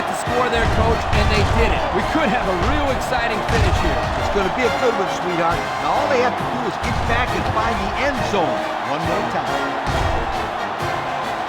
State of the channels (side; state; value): both; identical; correlation 1.00